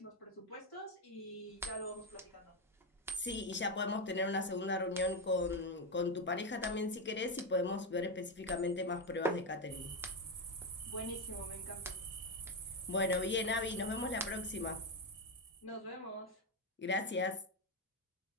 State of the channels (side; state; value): both; normal; correlation 0.08